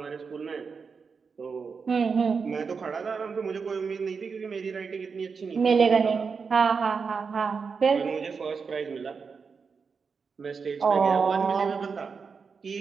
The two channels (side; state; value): left; quieter; 5.4 dB